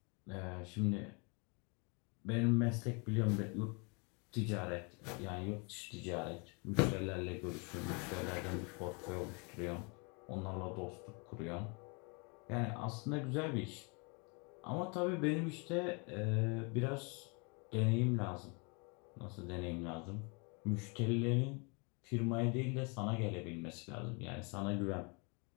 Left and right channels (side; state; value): right; quieter; 32.8 dB